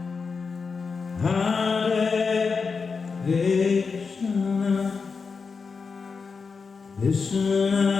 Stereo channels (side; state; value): right; quieter; 5.0 dB